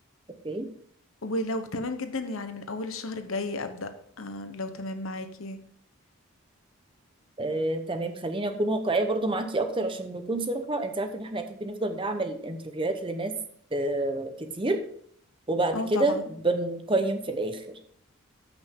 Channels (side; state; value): both; normal; correlation 0.42